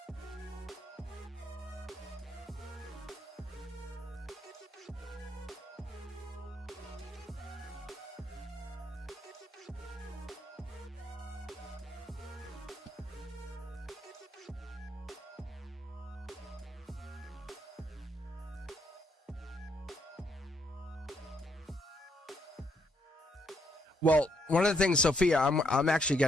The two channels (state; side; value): normal; both; correlation 0.74